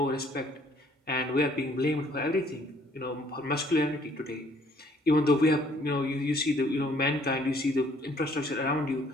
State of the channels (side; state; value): both; normal; correlation 0.61